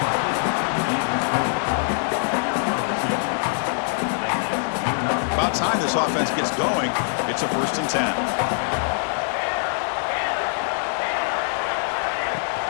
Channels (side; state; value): right; silent; digital silence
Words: About time this offense gets going. It's a 1st and 10.